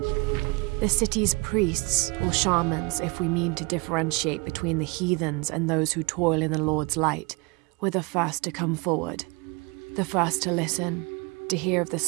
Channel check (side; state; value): left; quieter; 28.3 dB